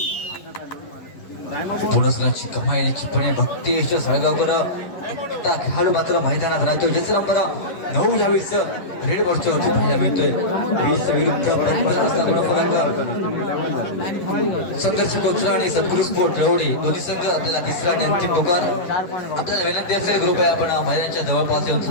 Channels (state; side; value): late; right; 11 ms